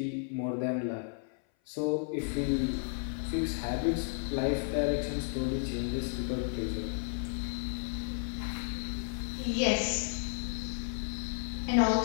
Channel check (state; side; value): silent; right; 56 dB below the other